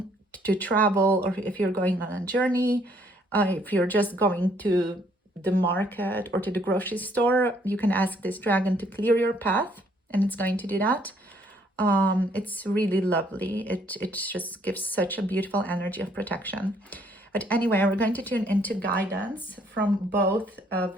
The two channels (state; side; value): normal; both; correlation 0.65